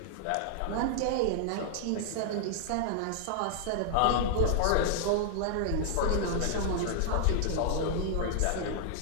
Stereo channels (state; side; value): different; both; correlation -0.01